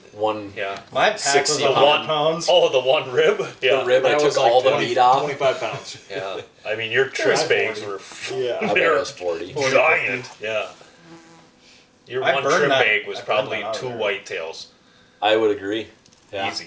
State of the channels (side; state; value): both; identical; correlation 1.00